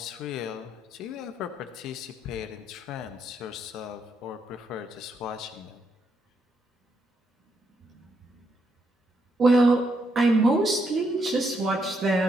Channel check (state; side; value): normal; both; correlation 0.77